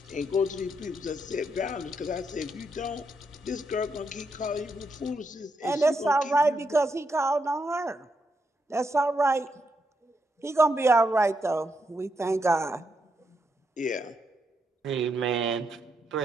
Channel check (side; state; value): both; normal; correlation 0.80